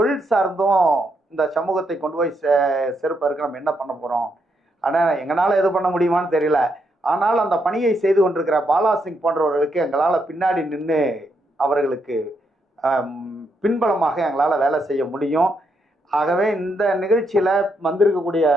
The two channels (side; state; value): both; normal; correlation 0.79